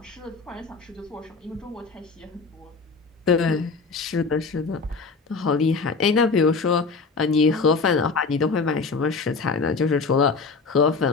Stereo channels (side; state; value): right; quieter; 4.4 dB